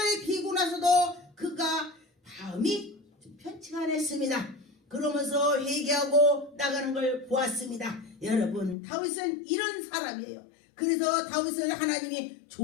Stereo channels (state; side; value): drops out; right; at 8.8 s